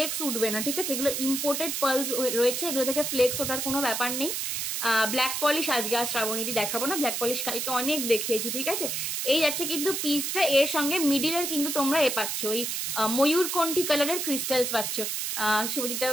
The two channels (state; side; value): noise; right; hiss, 2 dB below the sound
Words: উঠবে না, ঠিক আছে? এগুলো ইম্পোর্টেড পার্ল রয়েছে, এগুলো থেকে ফ্লেক্স ওঠার কোনো ব্যাপার নেই। ব্ল্যাক পলিশ আজকে আর শ্রাবণীদি দেখাবো না, ব্ল্যাক পলিশ কালকে অনেক দেখিয়েছি, ঠিক আছে? এই যাচ্ছে কিন্তু পিসটা, এর সঙ্গে মিডিলের কিন্তু তোমরা পাচ্ছ ওই ময়ূরকণ্ঠী কালারের ক্রিস্টালস পাচ্ছ। শুভজিৎ